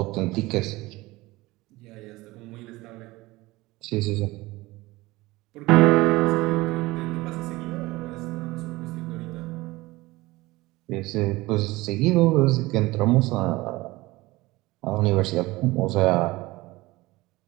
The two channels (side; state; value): left; quieter; 20.3 dB